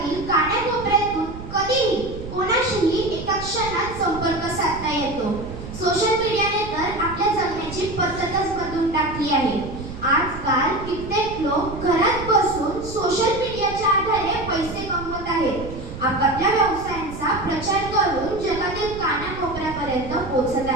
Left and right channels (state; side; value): noise; right; rumble, 11 dB below the sound